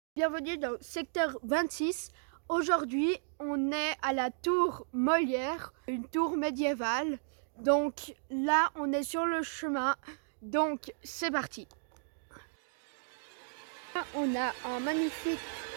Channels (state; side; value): silent; left; digital silence